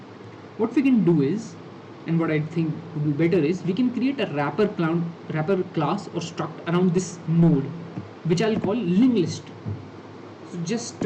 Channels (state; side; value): identical; both; correlation 1.00